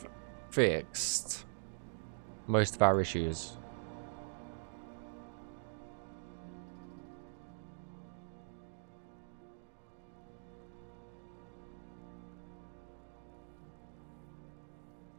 fixed most of our issues.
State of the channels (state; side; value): silent; left; digital silence